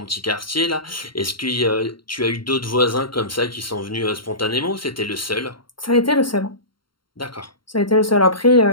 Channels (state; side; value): late; right; 0.73 ms